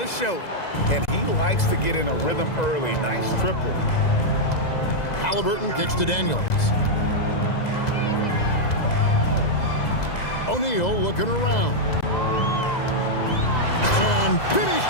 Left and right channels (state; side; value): late; right; 2.0 ms